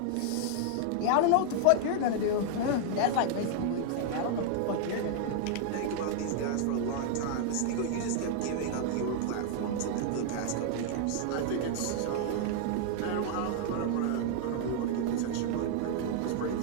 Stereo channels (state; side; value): different; both; correlation 0.00